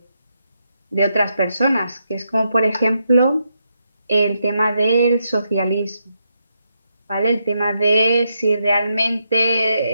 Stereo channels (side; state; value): both; inverted; correlation -0.82